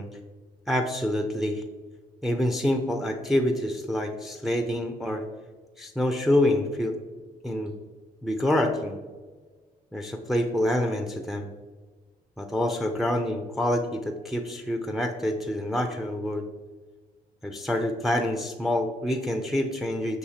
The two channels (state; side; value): normal; both; correlation 0.80